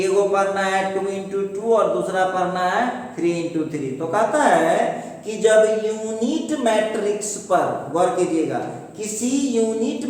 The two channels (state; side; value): identical; both; correlation 1.00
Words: पढ़ना है 2x2 और दूसरा पढ़ना है 3x3। तो कहता है कि जब यूनिट मैट्रिक्स पर, गौर कीजिएगा, किसी यूनिट